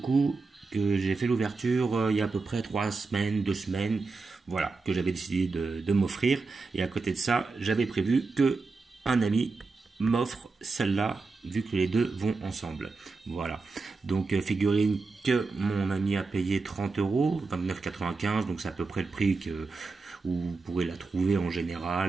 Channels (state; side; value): quieter; left; 4.1 dB